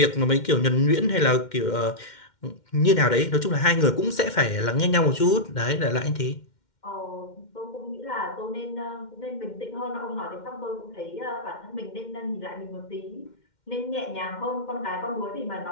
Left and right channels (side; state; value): right; late; 2.1 ms